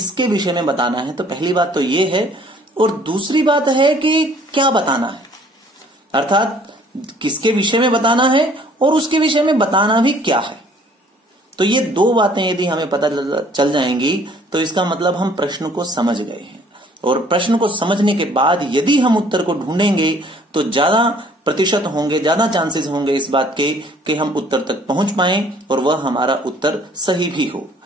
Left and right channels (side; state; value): both; normal; correlation 0.57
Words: विषय में बताना है। तो पहली बात तो ये है। और दूसरी बात है कि क्या बताना है, अर्थात किसके विषय में बताना है और उसके विषय में बताना भी क्या है। तो ये 2 बातें यदि हमें पता चल जाएंगी तो इसका मतलब हम प्रश्न को समझ गए हैं। और प्रश्न को समझने के बाद यदि हम उत्तर को ढूंढेंगे तो ज्यादा प्रतिशत होंगे, ज्यादा चांसेस होंगे इस बात के कि हम उत्तर तक पहुंच पाएं और वह हमारा उत्तर सही भी हो।